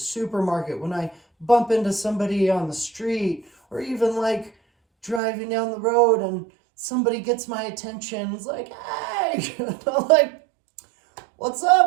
when I bump into somebody on the street, or even like driving down the road and somebody gets my attention. It's like, hey, and I'm like, what's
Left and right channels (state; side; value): drops out; left; at 5.2 s